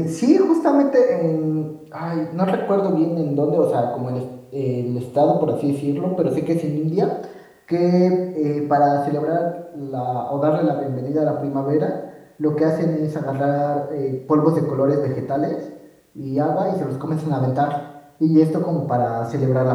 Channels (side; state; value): both; identical; correlation 1.00